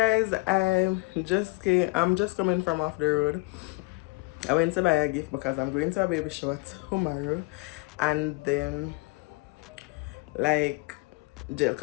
I'm just coming from off the road. I went to buy a gift because I'm going to a baby shower tomorrow, and then like gel,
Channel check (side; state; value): right; quieter; 25.8 dB